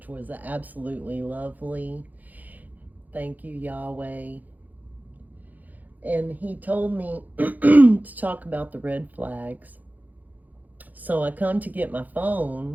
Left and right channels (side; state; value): left; late; 0.082 ms